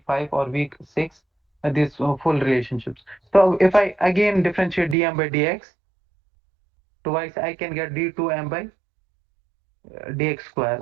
5 or week 6, these full relationships. So if I again differentiate dm by dx twice, I can get d2m by dx square,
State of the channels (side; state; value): left; drops out; at 5.0 s